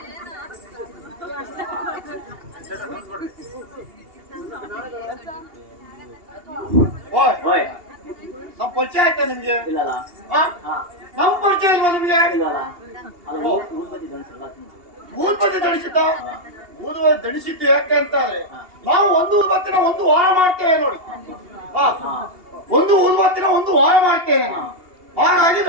ಪರಿಚಯ ಆಯ್ತಾ ನಿಮ್ಗೆ? ಇಲ್ಲಲ್ಲ. ಆ? ಹಾ ನಮ್ ಪರಿಚಯ ಇಲ್ವಾ ನಿಮ್ಗೆ? ಇಲ್ಲಲ್ಲ. ಅದು ಊದ್ಬತ್ತಿ ಧರಿಸಲ್ಲ ಊದ್ಬತ್ತಿ ದಣಿಸಿದ್ದ? ಊದುಬತ್ತಿ ದಣಿಸಿದ್ದು ಯಾಕೆ ಅಂತಾರೆ, ನಾವು ಒಂದು ಊದ್ಬತ್ತಿನ ಒಂದು ವಾರ ಮಾಡ್ತೇವೆ ನೋಡಿ. ಹಾ, ಒಂದು ಊದ್ಬತ್ತಿನ ಒಂದು ವಾರ ಮಾಡ್ತೇನೆ ನಾನು, ಹಾಗಾಗಿ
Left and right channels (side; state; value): left; late; 2.8 ms